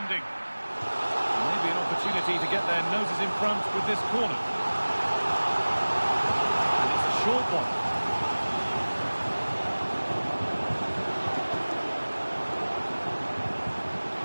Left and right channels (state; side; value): inverted; both; correlation -1.00